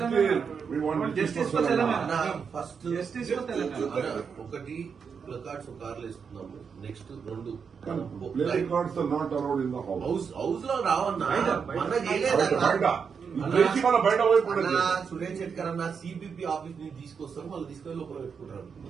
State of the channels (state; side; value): quieter; left; 6.2 dB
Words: ప్లకార్డ్స్ కార్లు వేసుకున్నాము. నెక్స్ట్ రెండు హౌస్ లో రావన్నా సురేష్ శెట్కర్ అన్న సిబిపి ఆఫీస్ నుంచి తీసుకొస్తారు, వాళ్ళు తీసుకొని లోపల పెట్టుకుంటారు.